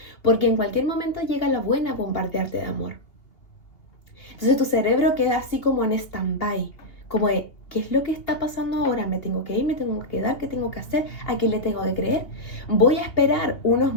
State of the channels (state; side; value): late; right; 2.8 ms